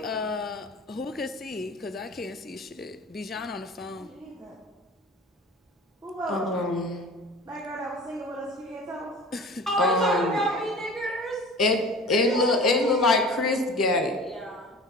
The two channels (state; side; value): normal; both; correlation 0.40